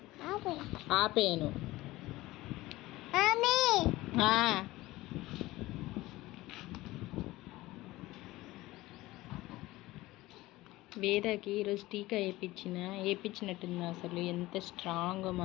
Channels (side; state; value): right; quieter; 18.4 dB